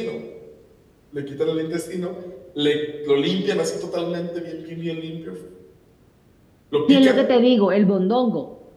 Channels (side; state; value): both; identical; correlation 1.00